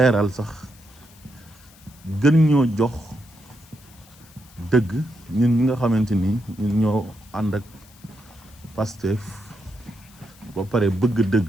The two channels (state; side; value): noise; left; hiss, 25 dB below the sound